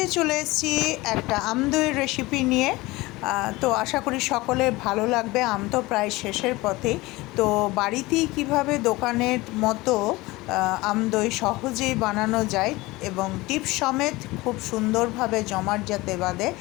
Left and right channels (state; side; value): quieter; right; 21.0 dB